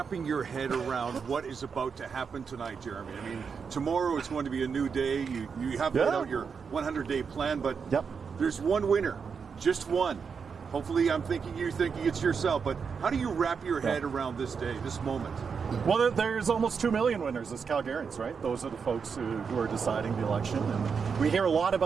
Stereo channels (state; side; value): quieter; left; 6.0 dB